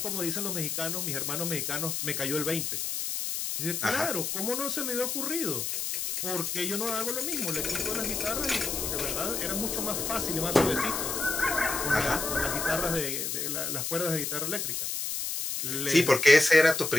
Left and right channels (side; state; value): left; noise; hiss, 2 dB below the sound